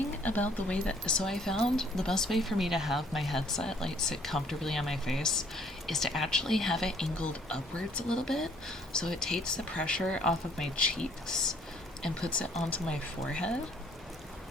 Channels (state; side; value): normal; both; correlation 0.61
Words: about the way that, so I found the best way for me to have my headset like sit comfortably on my face is to actually have it angled upwards a little bit, so it takes the pressure off of my cheeks and puts it onto my forehead.